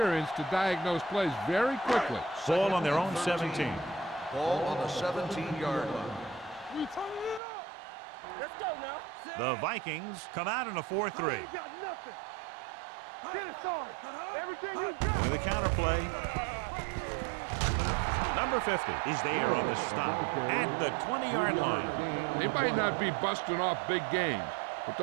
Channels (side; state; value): left; drops out; at 7.4 s